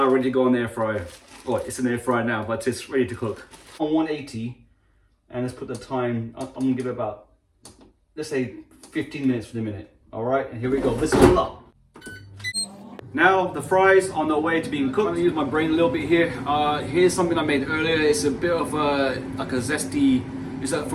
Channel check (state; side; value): identical; both; correlation 1.00